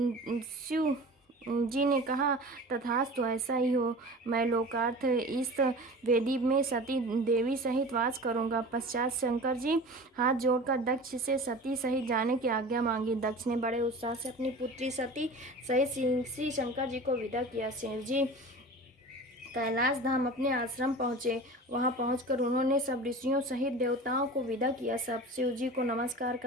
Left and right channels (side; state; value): both; normal; correlation 0.37